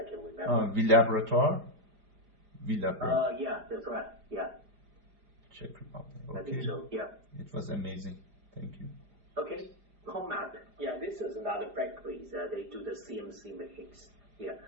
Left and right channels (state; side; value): late; left; 4.9 ms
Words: can remember. Villabrator? Yeah, that's right. Yeah. Czech Republic. Okay. I think so. Yeah. It was amazing. Thank you. Okay, Comap. Yeah, this is another factory. They do the CNC machines. Yeah,